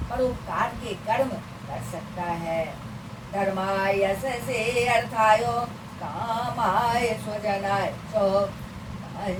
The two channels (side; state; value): both; identical; correlation 1.00